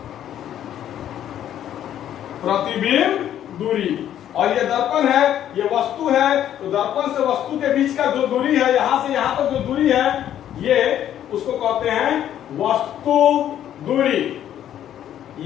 प्रतिबिंब दूरी। और ये दर्पण है, ये वस्तु है, तो दर्पण से वस्तु के बीच का जो दूरी है, यहां से यहां तक जो दूरी है, ये उसको कहते हैं वस्तु दूरी,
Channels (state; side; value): quieter; right; 10.9 dB